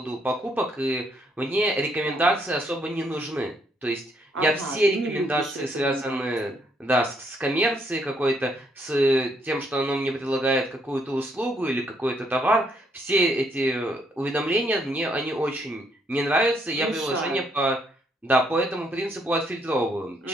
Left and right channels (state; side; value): normal; both; correlation 0.71